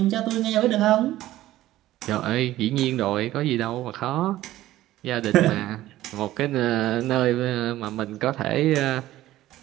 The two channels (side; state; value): left; quieter; 15.0 dB